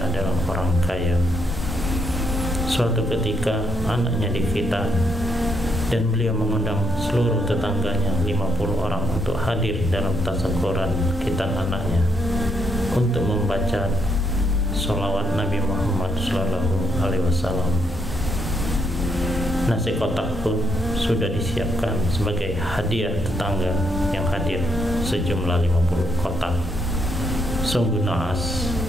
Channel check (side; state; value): both; normal; correlation 0.74